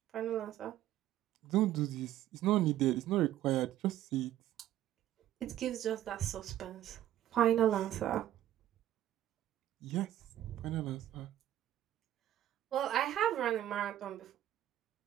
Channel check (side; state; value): left; quieter; 12.7 dB